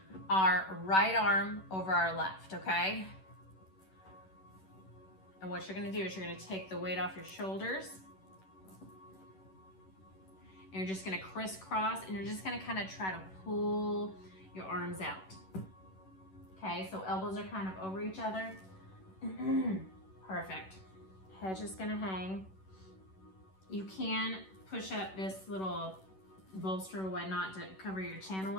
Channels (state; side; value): late; right; 11 ms